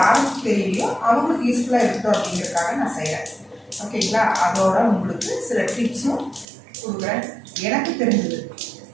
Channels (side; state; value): left; drops out; at 6.5 s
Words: தெரியலையோ அவங்களுக்கு யூஸ்ஃபுல்லாக இருக்கட்டும் அப்படிங்கிறதுக்காக நான் செய்கிறேன். ஓகேங்களா? அதோட உங்களுக்கு சில டிப்ஸும் கொடுக்குறேன். எனக்கு தெரிஞ்சது